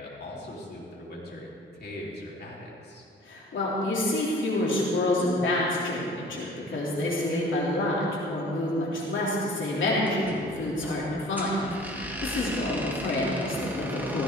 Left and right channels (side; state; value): both; normal; correlation 0.47